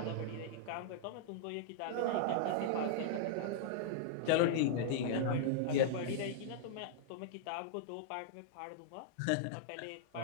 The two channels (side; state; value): both; different; correlation -0.01